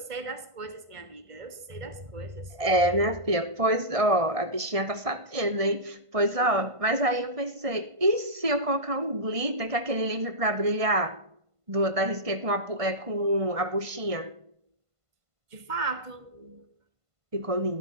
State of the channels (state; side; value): late; left; 1.5 ms